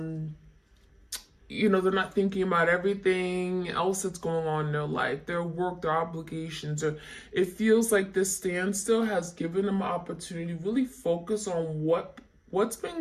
they're not thinking about everything else that's going on in their life, their work, their obligations, or it feels like this standstill has given them an opportunity to really focus on what's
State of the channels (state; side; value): identical; both; correlation 1.00